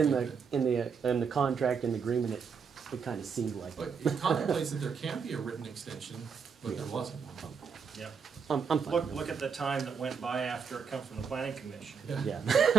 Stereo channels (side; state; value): left; quieter; 6.1 dB